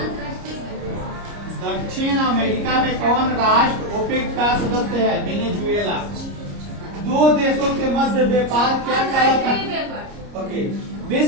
दक्षिण अमेरिका में कौन राष्ट्र ओपेक का सदस्य है? वेनेजुएला। 2 देशों के मध्य व्यापार क्या कहलाता है? ओके।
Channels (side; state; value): left; late; 30 ms